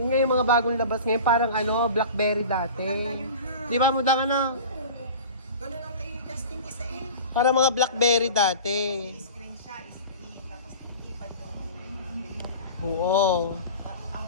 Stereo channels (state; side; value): inverted; both; correlation -0.37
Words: nga yung mga bagong labas ngayon, parang ano, Blackberry dati. Maganda yun, ha? Di ba, muda ka na? Ganun ang kay Justin isa eh. Parang mga Blackberry dati. Screen siya, screen. Tapos ilipad yung Oo. ang